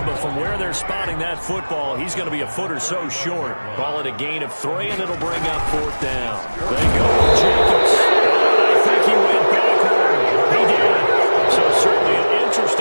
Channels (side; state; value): both; inverted; correlation -1.00